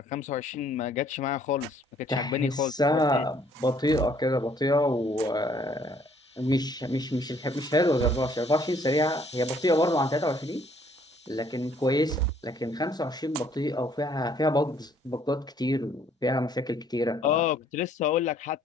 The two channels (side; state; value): both; normal; correlation 0.63